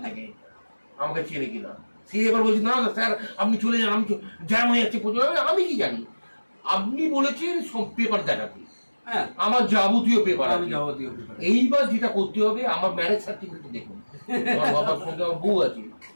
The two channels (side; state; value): both; inverted; correlation -1.00